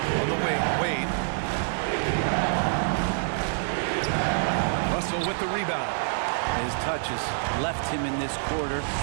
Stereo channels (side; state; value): left; silent; digital silence